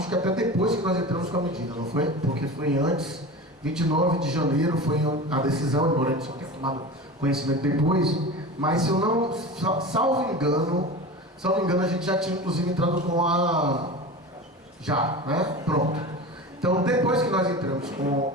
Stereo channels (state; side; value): normal; both; correlation 0.31